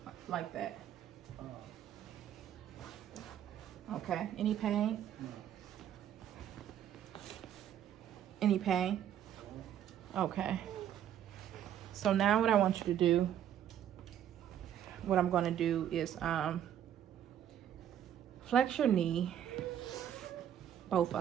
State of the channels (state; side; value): quieter; left; 10.3 dB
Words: like that. Okay. Any pain? Any pain? Okay. So now what I want you to do, what I'm going to do is flex your knee, both